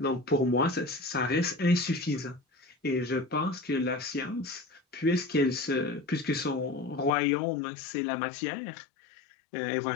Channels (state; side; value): drops out; right; at 7.1 s